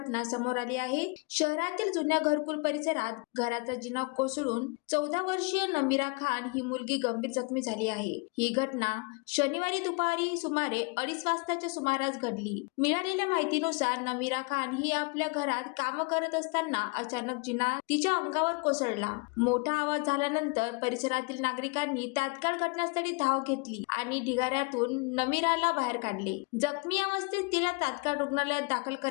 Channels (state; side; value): quieter; right; 30.7 dB